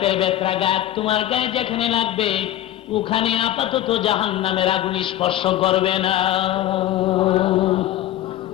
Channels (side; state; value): right; quieter; 13.0 dB